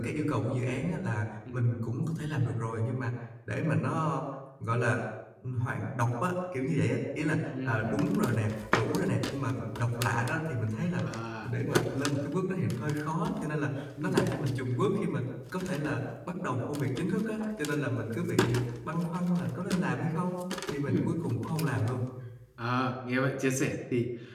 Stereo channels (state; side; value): identical; both; correlation 1.00